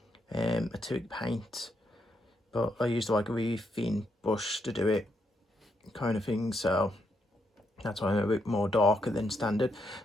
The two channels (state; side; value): normal; both; correlation 0.78